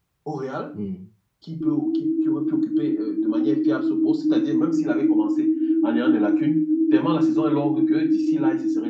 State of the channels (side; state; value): both; identical; correlation 1.00